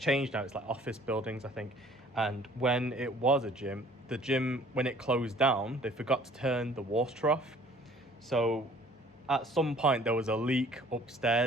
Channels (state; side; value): normal; both; correlation 0.54